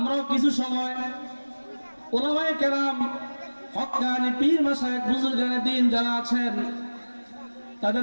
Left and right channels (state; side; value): inverted; both; correlation -1.00